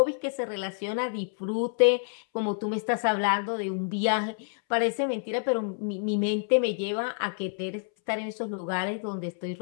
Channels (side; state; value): right; silent; 59 dB below the other